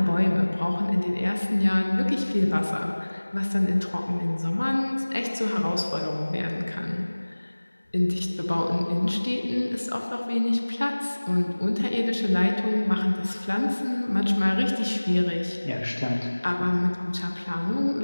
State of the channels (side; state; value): both; inverted; correlation -1.00